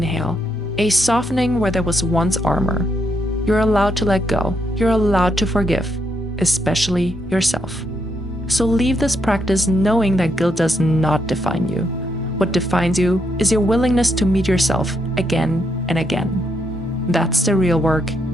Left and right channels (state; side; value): normal; both; correlation 0.78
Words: a softening where there was once armor. You're allowed to let go. You're allowed to forgive, especially yourself. So leave this practice knowing that guilt does not define you. What defines you is your willingness to meet yourself again and again. That's the real work,